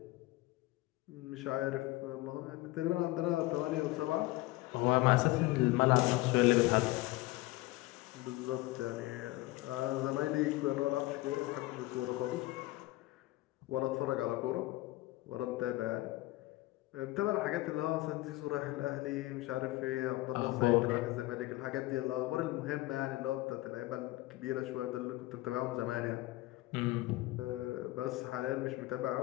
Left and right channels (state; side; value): quieter; right; 19.1 dB